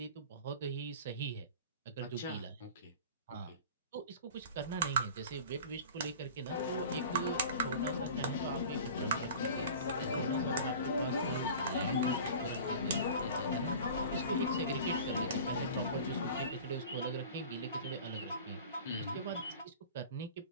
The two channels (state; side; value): inverted; both; correlation -0.40